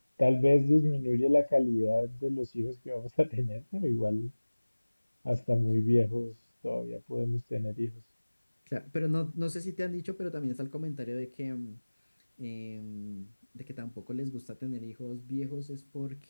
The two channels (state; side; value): inverted; both; correlation -1.00